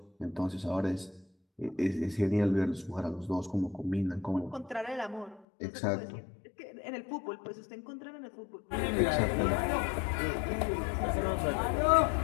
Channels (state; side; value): drops out; right; at 5.5 s